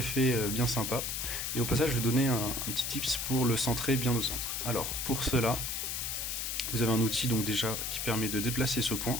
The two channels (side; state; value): left; noise; hiss, 2 dB below the sound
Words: bien sympa. Et au passage je vais donner un petit tips pour le centrer bien au centre. Alors pour cela, vous avez un outil donc déjà qui permet de déplacer ce point